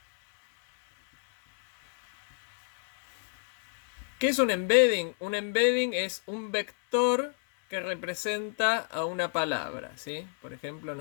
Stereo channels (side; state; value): right; silent; 57 dB below the other